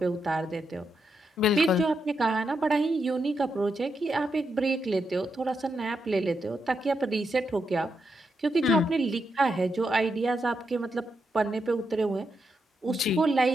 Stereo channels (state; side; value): normal; both; correlation 0.83